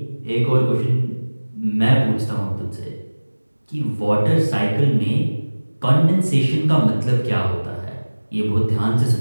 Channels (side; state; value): both; inverted; correlation -1.00